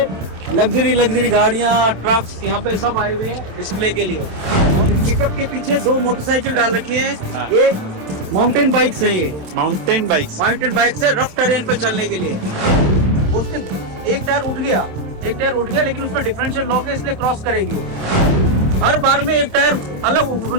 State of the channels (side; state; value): left; late; 27 ms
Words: लग्जरी गाड़ियाँ, ट्रक्स यहाँ पे सब आए हुए हैं डिस्प्ले के लिए। पिकअप के पीछे 2 मोटरसाइकिल डाल रखी है। ये माउंटेन बाइक्स है, ये माउंटेन बाइक्स है रफ टेरेन पे चलने के लिए। उसके एक टायर उठ गया लेकिन उसमें डिफरेंशियल लॉक है, इसलिए क्रॉस करेगी। हर बार में एक टायर अलग